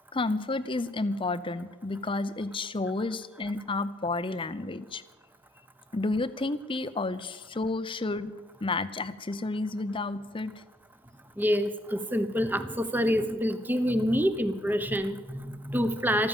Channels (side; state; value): both; normal; correlation 0.70